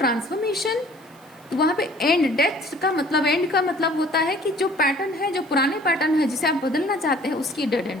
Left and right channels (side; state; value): right; noise; hiss, 29 dB below the sound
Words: तो वहाँ पे एंड, डेथ का मतलब, एंड का मतलब होता है कि जो पैटर्न है, जो पुराने पैटर्न है जिसे आप बदलना चाहते हैं, उसकी डेड